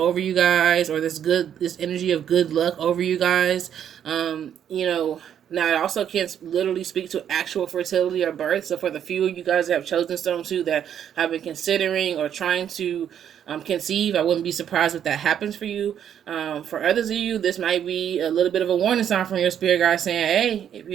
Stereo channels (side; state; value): left; quieter; 9.3 dB